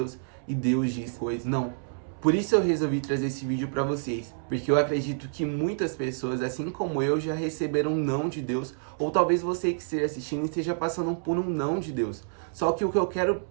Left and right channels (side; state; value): left; silent; 59 dB below the other